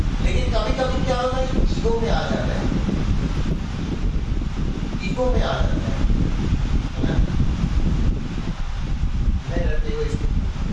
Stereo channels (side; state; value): both; identical; correlation 1.00